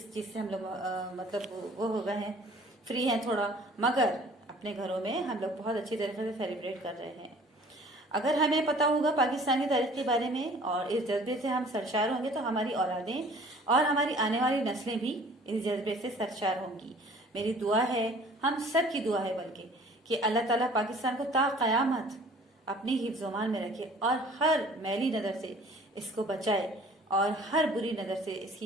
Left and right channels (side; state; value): both; normal; correlation 0.51